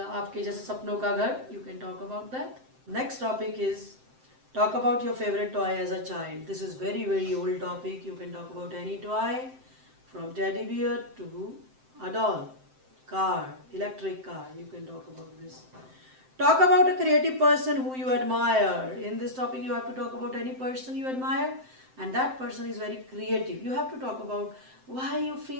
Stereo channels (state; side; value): late; left; 7.7 ms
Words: आपके जैसे सपनों का घर. You can talk about that. Next topic is talk about your favorite toy as a child. This is very old topic. You can talk about any toy from teddy bear to a doll, car, electric car. You can talk about this. Talk about a creative person who you admire. In this topic you have to talk about any person you admire and that person is very creative. You have to talk about why you